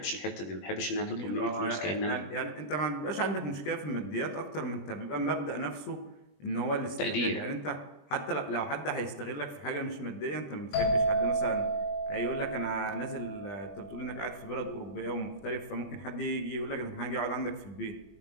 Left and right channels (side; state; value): right; late; 20 ms